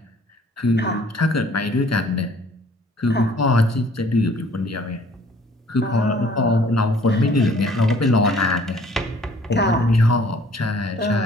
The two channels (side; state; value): both; normal; correlation 0.56